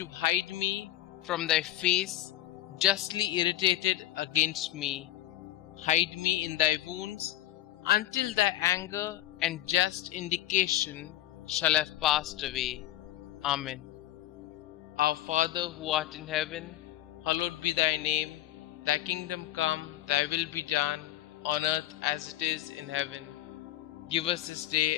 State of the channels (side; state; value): right; quieter; 14.5 dB